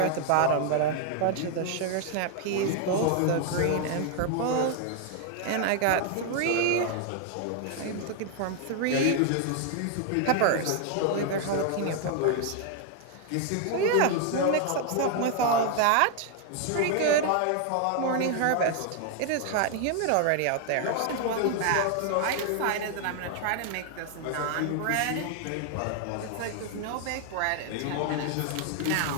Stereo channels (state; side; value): different; both; correlation 0.00